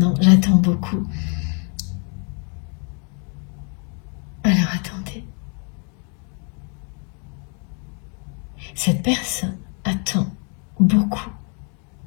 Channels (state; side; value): quieter; right; 38.3 dB